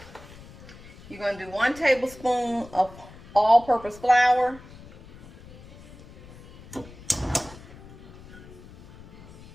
You're gonna do 1 tablespoon of all-purpose flour.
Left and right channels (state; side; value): noise; left; rumble, 19 dB below the sound